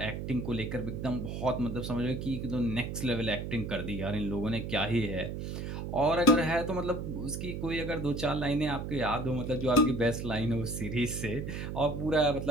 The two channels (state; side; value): noise; right; hum, 5 dB below the sound